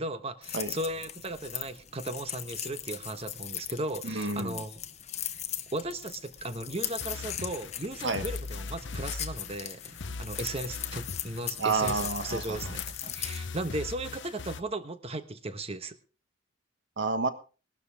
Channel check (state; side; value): normal; both; correlation 0.11